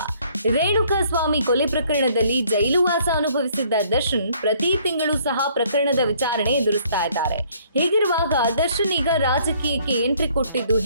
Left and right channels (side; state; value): both; inverted; correlation -0.62